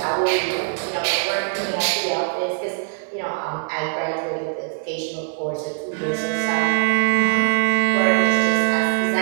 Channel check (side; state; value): left; silent; 64 dB below the other